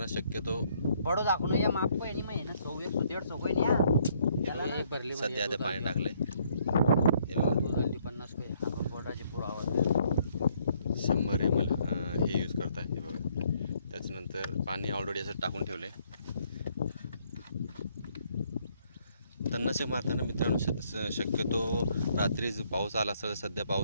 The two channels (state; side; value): inverted; both; correlation -0.67